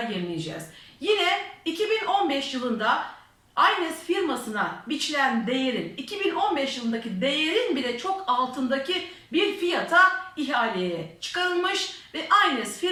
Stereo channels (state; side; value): identical; both; correlation 1.00